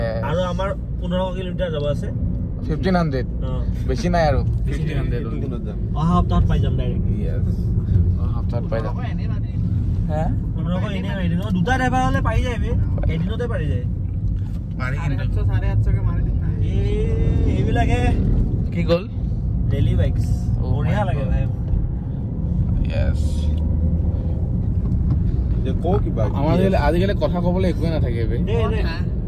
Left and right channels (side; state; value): both; identical; correlation 1.00